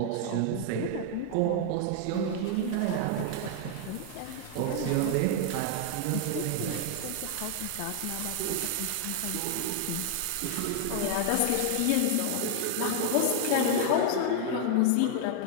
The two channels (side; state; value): both; different; correlation 0.00